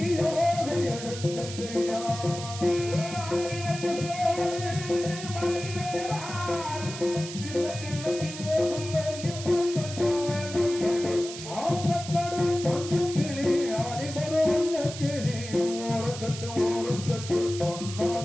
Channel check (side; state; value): right; noise; hiss, 10 dB below the sound